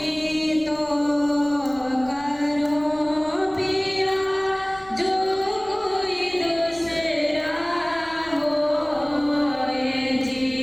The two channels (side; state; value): left; noise; rumble, 24 dB below the sound